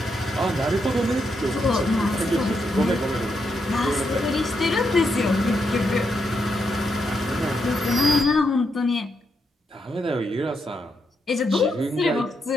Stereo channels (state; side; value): normal; both; correlation 0.81